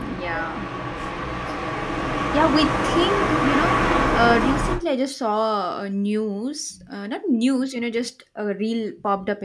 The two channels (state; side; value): identical; both; correlation 1.00